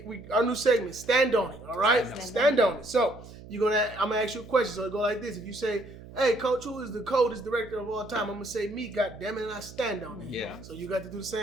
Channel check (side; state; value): right; noise; hum, 17 dB below the sound